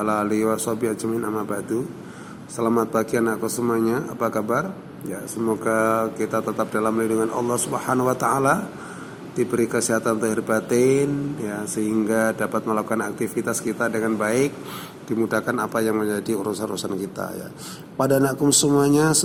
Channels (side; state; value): both; identical; correlation 1.00